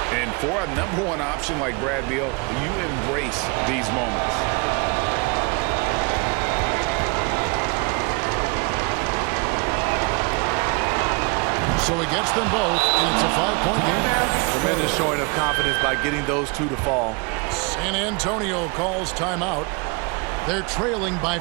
And for a #1 option like Brad Beal, you embrace these moments. So he gets them both, and it's a 5-point game. Tremendous showing of confidence by getting those 2 to fall. San Antonio calls timeout. They're trailing by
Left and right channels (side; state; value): left; quieter; 30.0 dB